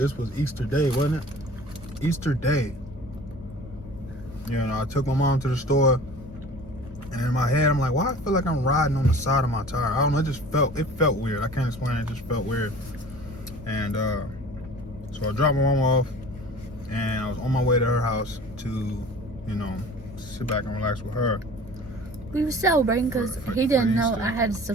Easter Day, wasn't it? Easter Day. You know, I took my mom to the store, and in my head, I'm like, why I feel like I'm riding on the side of my tire? I don't know, it felt weird. I can't explain it, just felt weird. And so I dropped my mom off, and I was on my way to her house to, you know, sit back and relax with her. We were celebrating because he didn't know Easter. I had a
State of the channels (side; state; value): both; normal; correlation 0.43